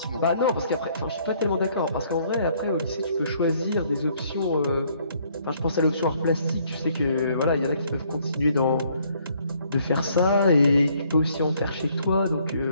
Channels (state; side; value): inverted; both; correlation -0.65